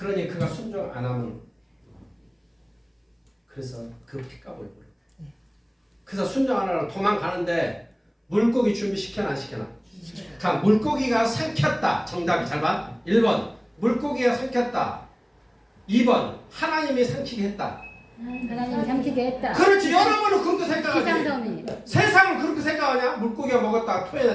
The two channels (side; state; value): both; identical; correlation 1.00